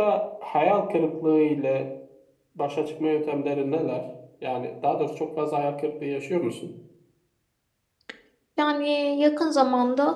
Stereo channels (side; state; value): both; identical; correlation 1.00